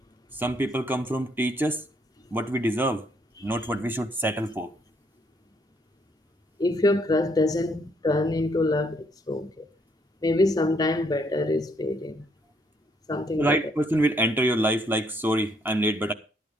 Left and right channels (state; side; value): normal; both; correlation 0.70